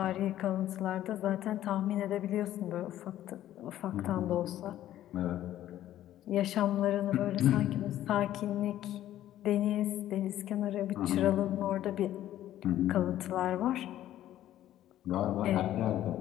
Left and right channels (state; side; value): quieter; right; 12.8 dB